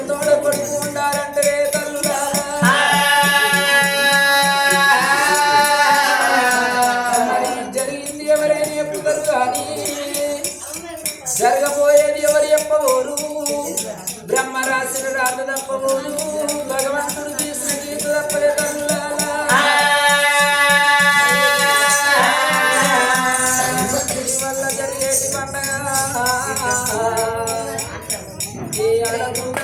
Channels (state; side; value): identical; both; correlation 1.00